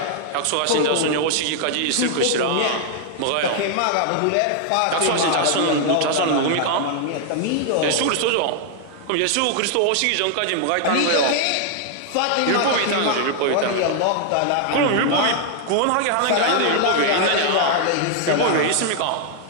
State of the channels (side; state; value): both; different; correlation 0.00